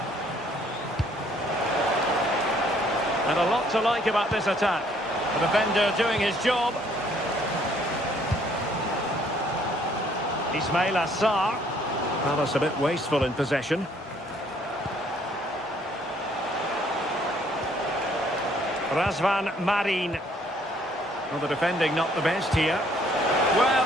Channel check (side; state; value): both; normal; correlation 0.63